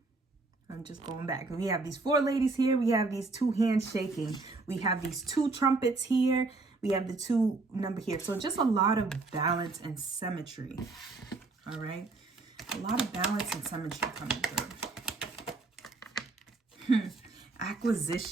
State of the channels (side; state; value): left; quieter; 3.6 dB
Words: I'm just going back. We have these 4 ladies here. We have these 2 hands shaking. We have these 2 trumpets here. We have the 2 number here. So just a lot of balance and symmetry. All right. A lot of balance and symmetry coming through.